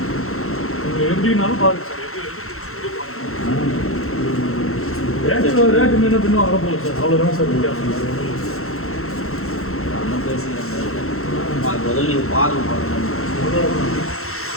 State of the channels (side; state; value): right; late; 0.63 ms